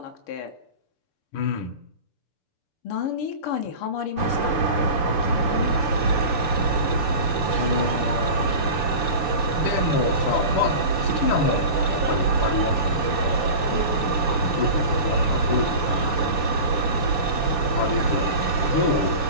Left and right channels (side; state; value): right; late; 6.8 ms